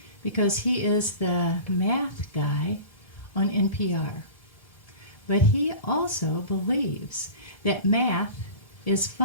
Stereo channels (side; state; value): right; late; 1.7 ms